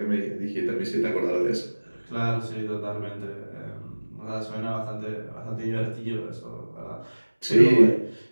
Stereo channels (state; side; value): inverted; both; correlation -1.00